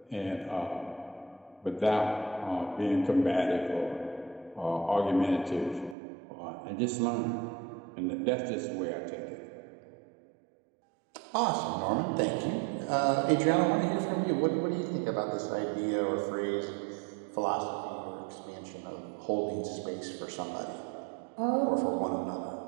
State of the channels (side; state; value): left; drops out; at 6.0 s